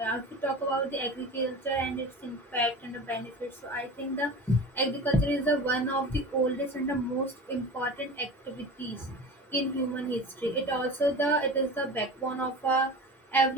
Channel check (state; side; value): normal; both; correlation 0.34